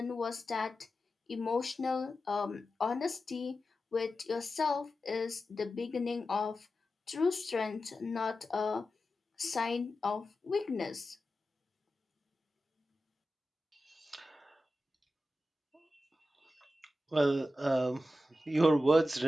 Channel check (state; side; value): normal; both; correlation 0.92